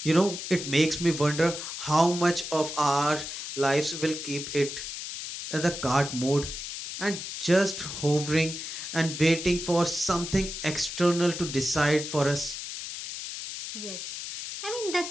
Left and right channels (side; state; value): left; noise; hiss, 7 dB below the sound